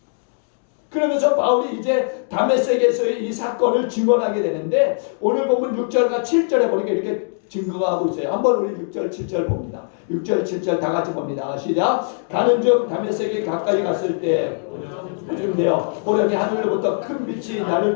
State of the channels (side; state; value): right; silent; digital silence